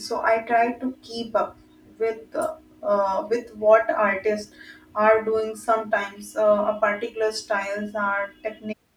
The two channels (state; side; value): identical; both; correlation 1.00